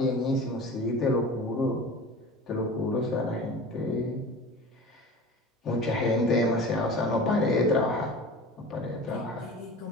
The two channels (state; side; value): normal; both; correlation 0.36